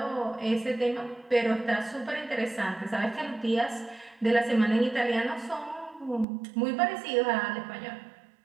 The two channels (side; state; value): left; drops out; at 6.2 s